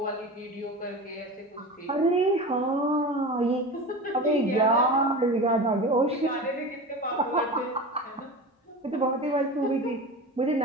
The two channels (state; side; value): normal; both; correlation 0.30